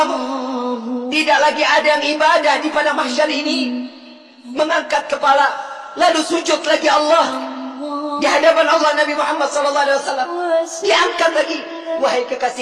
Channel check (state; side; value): identical; both; correlation 1.00